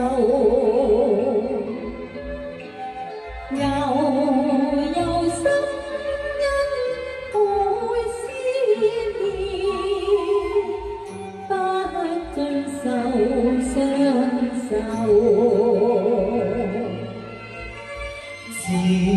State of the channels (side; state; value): both; identical; correlation 1.00